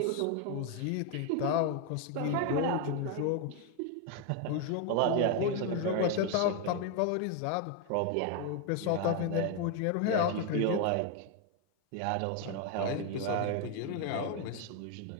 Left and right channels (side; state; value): both; different; correlation 0.01